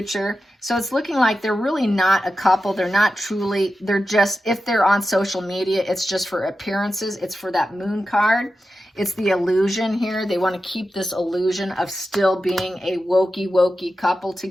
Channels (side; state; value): both; normal; correlation 0.92